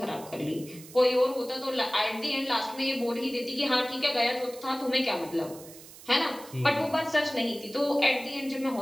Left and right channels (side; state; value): right; noise; hiss, 18 dB below the sound